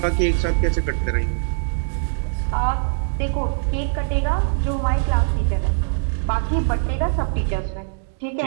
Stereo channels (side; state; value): left; silent; digital silence